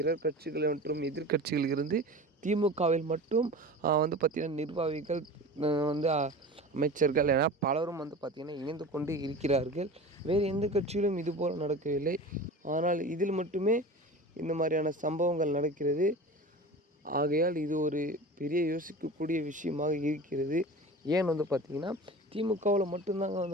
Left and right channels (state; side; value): normal; both; correlation 0.34